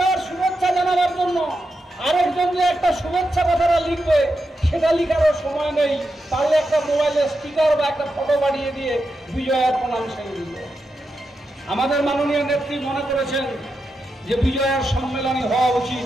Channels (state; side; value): normal; both; correlation 0.87